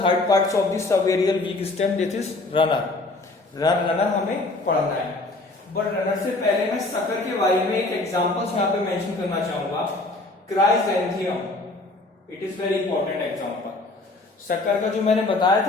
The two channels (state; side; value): quieter; right; 3.1 dB